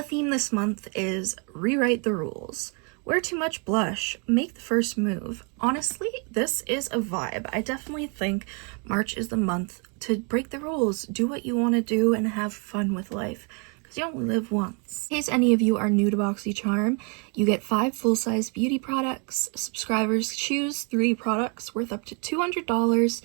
theme this month is Rewrite the Rules. Wear too much blush, make the first move. Honestly, this is a vibe. I definitely think March is the month to break the rules, do what you want to do, and have fun with life, because you only live once. In case any of you are new to Boxycharm, you get 5 full-size beauty products. Subscribers choose 3 products worth up to $200.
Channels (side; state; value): left; quieter; 35.6 dB